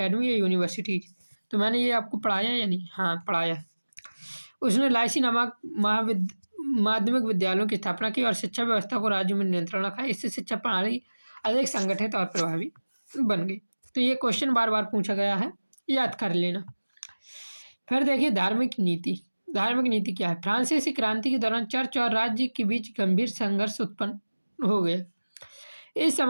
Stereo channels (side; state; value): both; inverted; correlation -1.00